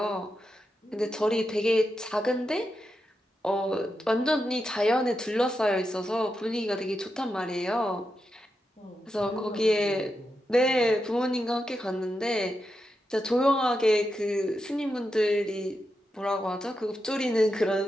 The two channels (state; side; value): normal; both; correlation 0.87